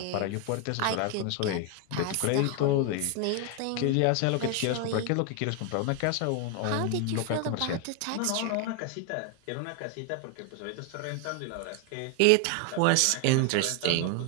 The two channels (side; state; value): both; different; correlation 0.01